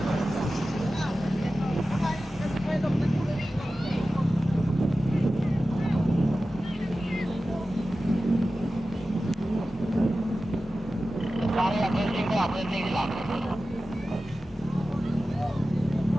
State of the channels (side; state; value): both; normal; correlation 0.94